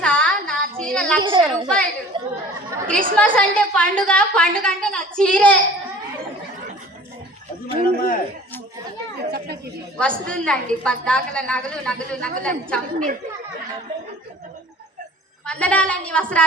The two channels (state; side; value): normal; both; correlation 0.47